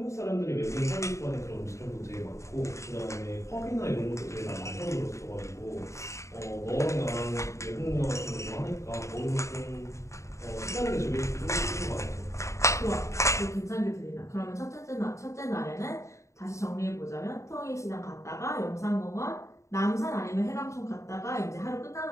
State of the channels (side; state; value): right; late; 0.14 ms